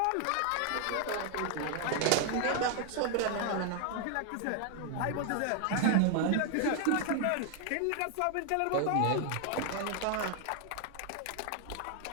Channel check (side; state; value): both; different; correlation 0.00